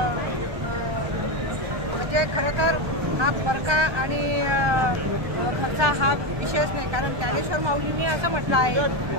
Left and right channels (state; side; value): late; left; 1.2 ms